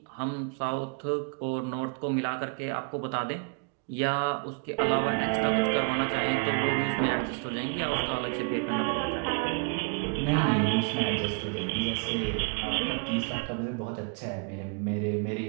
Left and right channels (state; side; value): quieter; left; 39.1 dB